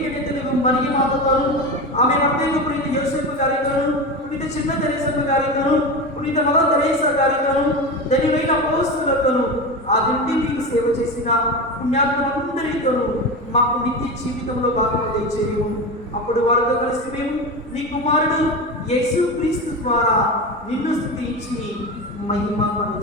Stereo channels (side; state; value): both; normal; correlation 0.23